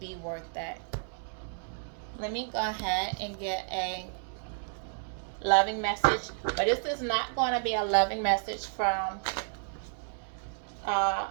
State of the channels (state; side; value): silent; left; 57 dB below the other